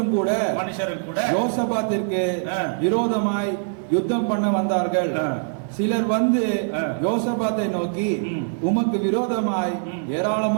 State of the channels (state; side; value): silent; left; 63 dB below the other